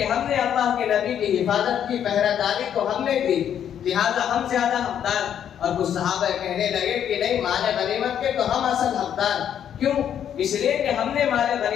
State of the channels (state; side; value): quieter; right; 9.3 dB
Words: ہم نے اللہ کے نبی کی حفاظت کی پہرہ داری تو ہم نے دی، لہذا ہم زیادہ حقدار. اور کچھ صحابہ کہنے لگے کہ نہیں، مال غنیمت کے تو ہم اصل حقدار. کیوں؟ اس لیے کہ ہم نے مال